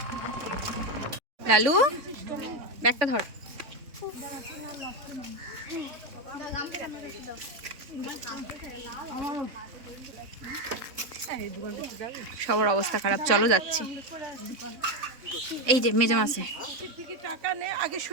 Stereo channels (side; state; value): left; late; 3.6 ms